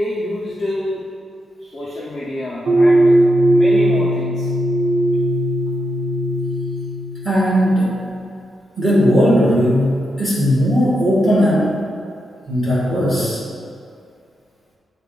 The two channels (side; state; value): both; normal; correlation 0.85